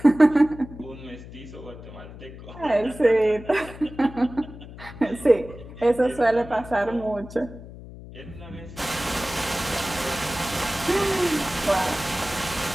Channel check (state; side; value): noise; left; hum, 15 dB below the sound